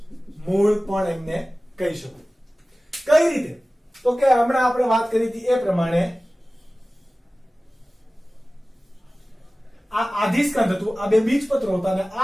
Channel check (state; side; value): normal; both; correlation 0.97